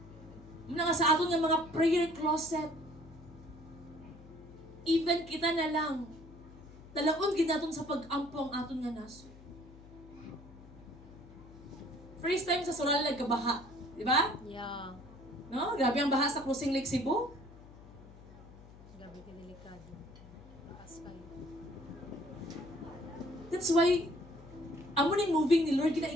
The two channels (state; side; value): noise; left; hum, 19 dB below the sound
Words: Muna nga sa aton nga mga prayer closet. Even kita na lang. Dalaon ginaton sa pag-ampo ang aton nga naso. First time sa Soral nagkabaha. Di ba? Yeah. No? Grabe ang baha sa Crossing Lake Cebu. Gabi ka delikado. Takas kayo. That's why, amo ning moving ni Lord,